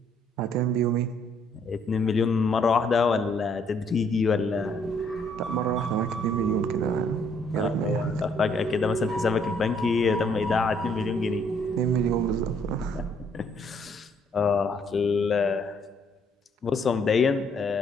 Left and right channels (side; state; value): both; normal; correlation 0.67